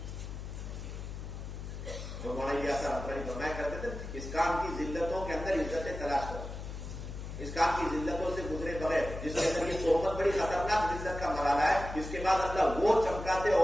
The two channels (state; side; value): noise; left; hum, 8 dB below the sound